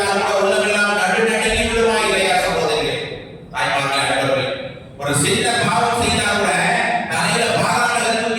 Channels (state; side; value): identical; both; correlation 1.00